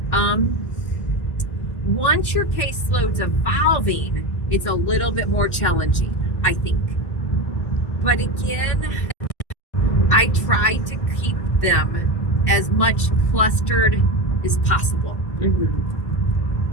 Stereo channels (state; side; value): late; right; 1.5 ms